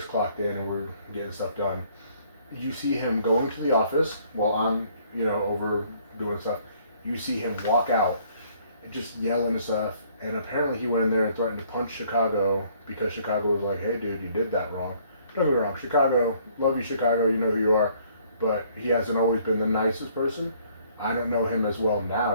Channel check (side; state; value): both; inverted; correlation -0.62